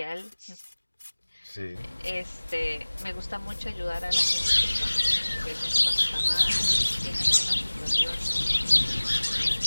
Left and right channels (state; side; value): inverted; both; correlation -1.00